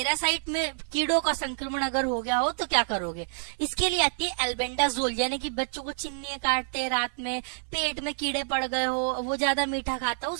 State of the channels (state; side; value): silent; left; digital silence